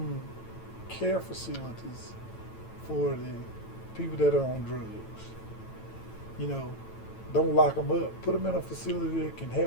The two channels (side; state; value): right; late; 9.0 ms